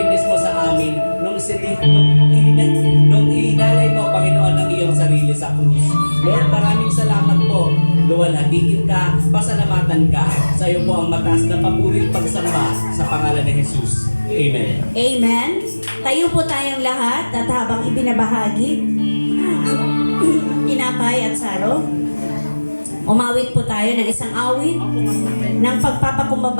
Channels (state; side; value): inverted; both; correlation -1.00